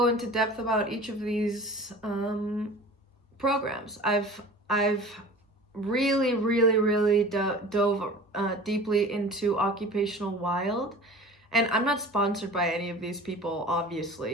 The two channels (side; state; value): both; normal; correlation 0.40